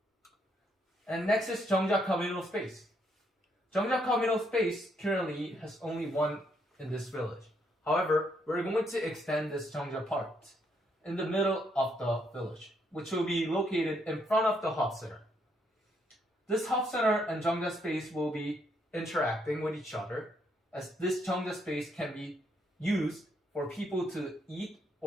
And next is Jeongja Communal Space. Jeongja Communal Space currently has only one in this village. However, we're going to extend this Jeongja part in the middle of the village, which will be located in front of the hub center. This hub center and Jeongja space will be interacting with each other, as this Jeongja space can be used for people to eat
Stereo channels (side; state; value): both; normal; correlation 0.74